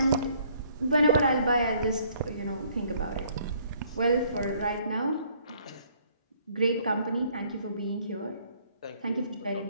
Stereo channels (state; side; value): inverted; both; correlation -0.63